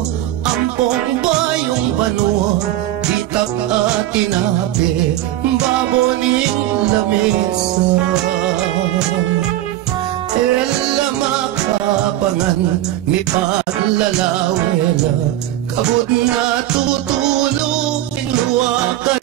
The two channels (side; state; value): left; quieter; 14.0 dB